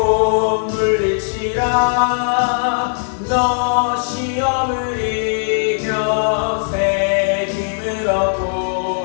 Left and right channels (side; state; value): right; silent; 55 dB below the other